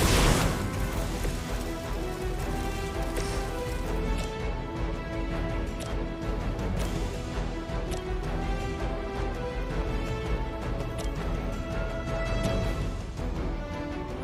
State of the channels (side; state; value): both; identical; correlation 1.00